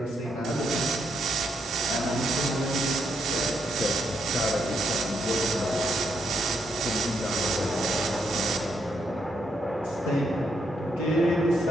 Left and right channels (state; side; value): normal; both; correlation 0.78